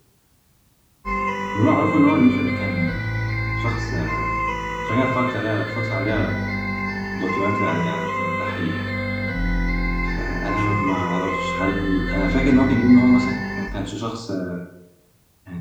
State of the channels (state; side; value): identical; both; correlation 1.00